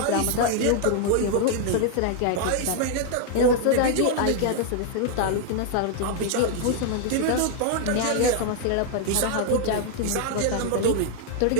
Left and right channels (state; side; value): different; both; correlation 0.00